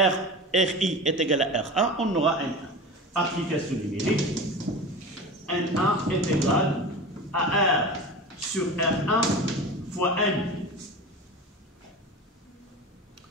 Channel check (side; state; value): both; normal; correlation 0.31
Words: Ri est égal à R1, on aura N1. Application numérique, N1 est égal à R sur R1 fois N.